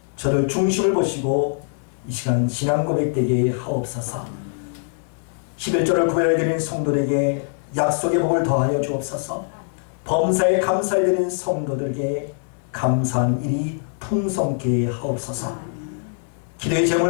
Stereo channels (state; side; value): silent; right; digital silence